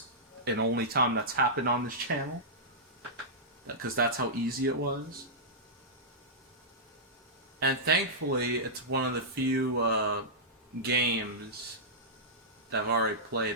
and only time that's happened on this channel, because that's how easy it was. And thankfully, it's one of the few games that I've already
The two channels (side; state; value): both; normal; correlation -0.13